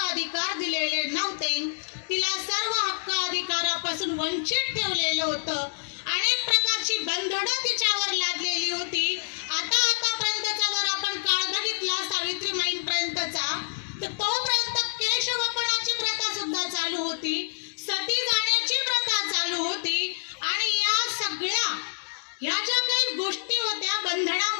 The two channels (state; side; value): silent; right; digital silence